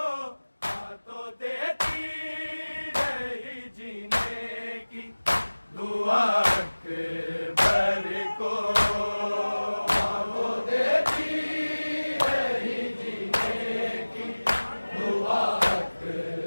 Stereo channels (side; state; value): both; inverted; correlation -1.00